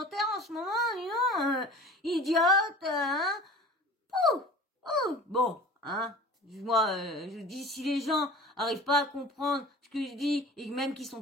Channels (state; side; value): normal; both; correlation 0.41